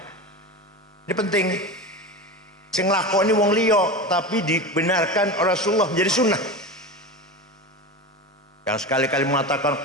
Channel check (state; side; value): normal; both; correlation 0.26